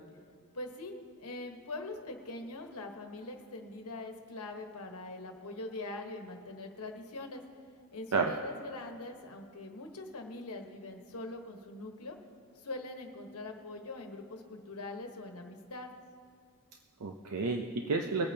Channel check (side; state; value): both; normal; correlation -0.08